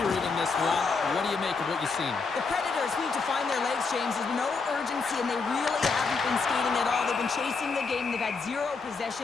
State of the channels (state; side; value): quieter; right; 4.6 dB